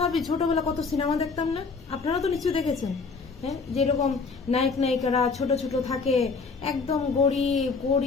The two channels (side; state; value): right; quieter; 4.6 dB